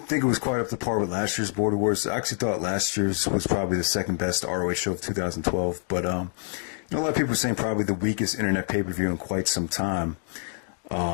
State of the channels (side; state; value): right; silent; digital silence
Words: think it was quite up to par with last year's Border Wars. I actually thought last year's was probably the second best ROH show of 2012. But a lot of people are saying probably the weakest internet pay-per-view in quite some time,